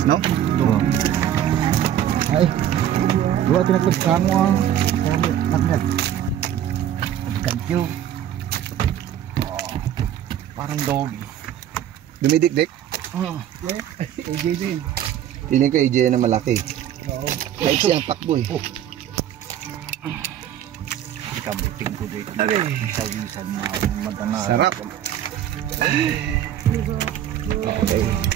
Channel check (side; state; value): left; quieter; 10.8 dB